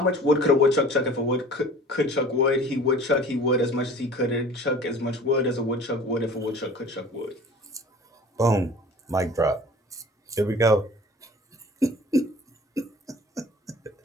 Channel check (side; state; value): both; normal; correlation 0.44